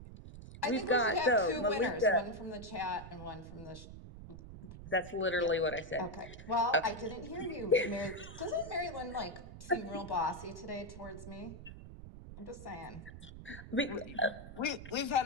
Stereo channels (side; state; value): right; noise; rumble, 13 dB below the sound